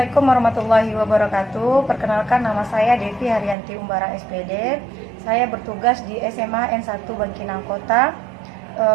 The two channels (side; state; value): left; drops out; at 3.6 s